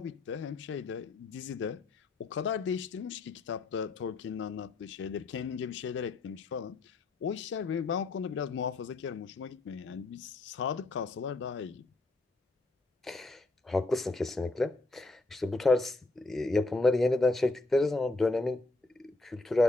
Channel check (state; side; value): quieter; right; 3.1 dB